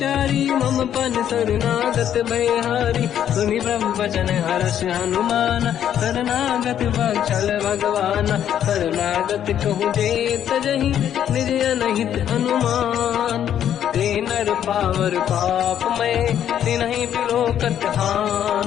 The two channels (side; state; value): right; quieter; 10.0 dB